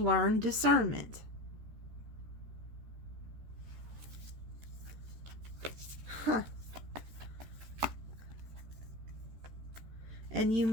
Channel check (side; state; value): left; late; 14 ms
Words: discernment. And you